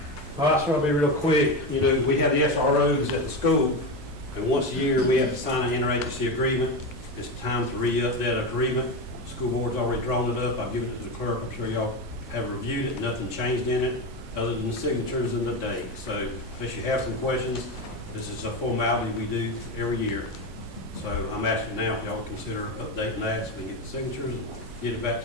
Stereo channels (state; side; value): normal; both; correlation 0.17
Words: Well, that's going to be real quick. We have the SROs at the school, and once a year, we have to sign an interagency agreement. It's time to re-up that agreement. The school board's already drawn it up. I've given it to the clerk. I'm sure y'all have reviewed it. Nothing changed in it, other than the signatures and the date. So, unless you have some questions, this is a formality we do every year. So, I'm asking now if y'all consider updating that so we can get the signatures, and get it back